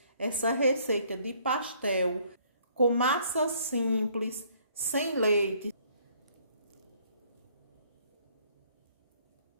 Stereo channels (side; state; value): both; inverted; correlation -0.63